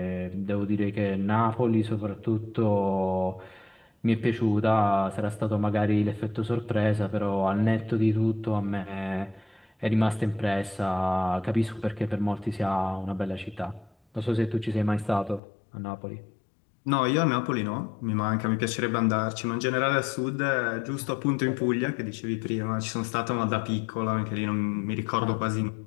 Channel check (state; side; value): drops out; right; at 15.4 s